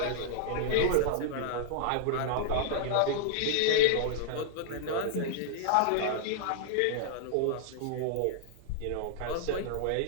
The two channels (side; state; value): both; different; correlation -0.01